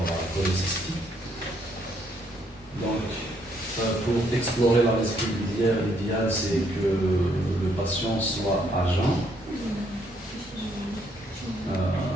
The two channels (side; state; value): both; normal; correlation 0.70